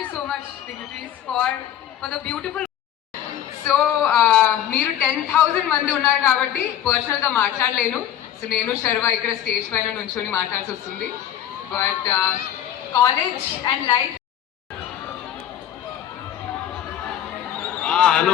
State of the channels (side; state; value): right; quieter; 10.8 dB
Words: you so much, dignitaries, for the beautiful. So మీరు 10,000 మంది ఉన్నారు కాబట్టి పర్సనల్గా మాట్లాడలేను. సో నేను శర్వ ఇక్కడ స్టేజ్ పైన నుంచొని మాట్లాడాల్సి వస్తుంది. But college and life.